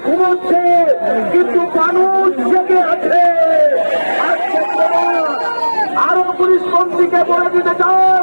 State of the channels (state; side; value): inverted; both; correlation -1.00